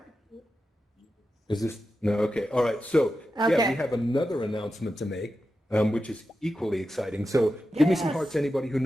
Is this, no, okay. All right, so yeah, we have another announcement to make, which is equally exciting. So give me some hearts, anybody who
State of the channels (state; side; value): normal; both; correlation 0.90